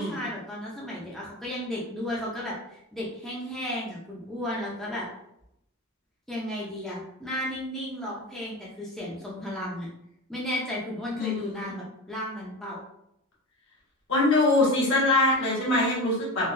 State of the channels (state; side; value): normal; both; correlation 0.27